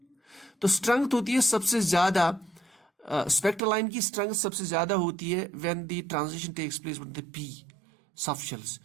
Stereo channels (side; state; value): left; drops out; at 3.6 s